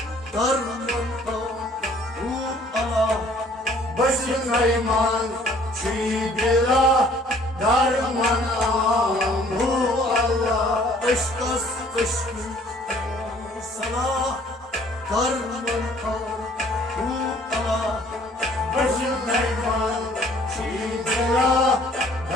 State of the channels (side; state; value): both; normal; correlation 0.57